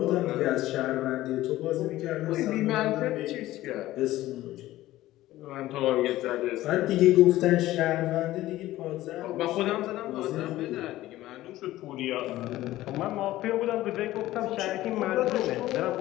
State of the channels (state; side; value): quieter; right; 15.7 dB